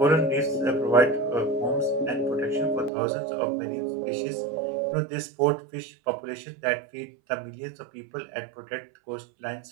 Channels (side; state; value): left; drops out; at 2.9 s